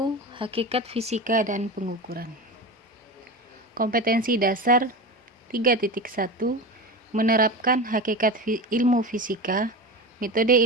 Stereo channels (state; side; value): normal; both; correlation 0.26